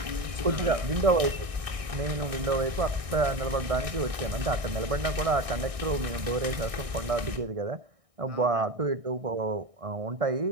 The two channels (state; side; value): late; left; 1.6 ms